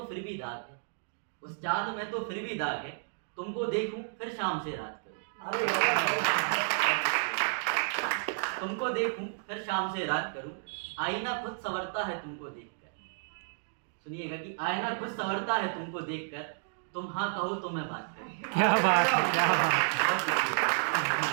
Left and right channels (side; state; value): left; silent; digital silence